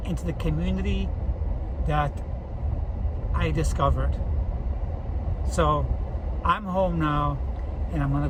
into the community that I discovered. So I'm home now, and I'm going to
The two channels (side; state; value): both; identical; correlation 1.00